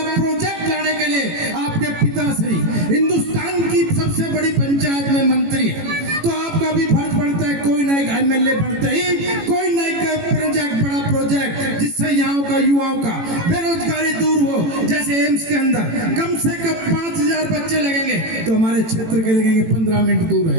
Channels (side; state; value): left; late; 18 ms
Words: प्रोजेक्ट लाने के लिए आपके पिताश्री हिंदुस्तान की सबसे बड़ी पंचायत में मंत्री है, तो आपका भी फर्ज बनता है कोई नई एमएलए बनते ही कोई नई प्रोजेक्ट, बड़ा प्रोजेक्ट जिससे यहाँ का युवाओं का बेरोजगारी दूर हो। जैसे एम्स के अंदर कम से कम 5000 बच्चे लगेंगे तो हमारे क्षेत्र के लगेंगे 15 मिनट दूर